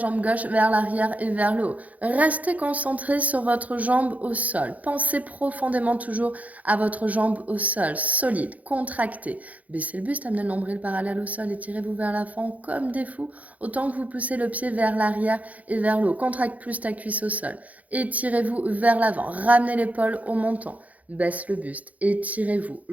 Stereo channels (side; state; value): left; late; 0.073 ms